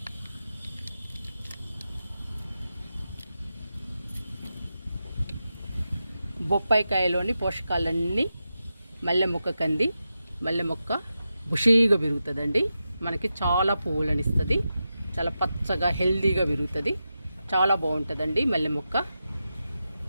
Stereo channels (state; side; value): inverted; both; correlation -0.90